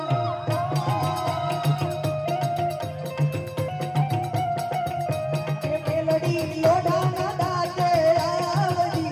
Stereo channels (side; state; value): both; identical; correlation 1.00